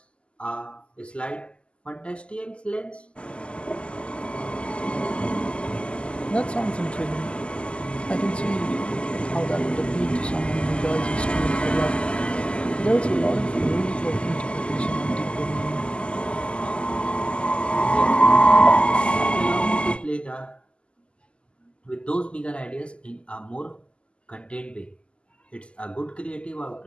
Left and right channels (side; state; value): right; late; 0.053 ms